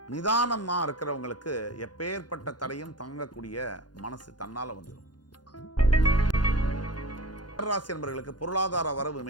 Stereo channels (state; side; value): late; right; 0.70 ms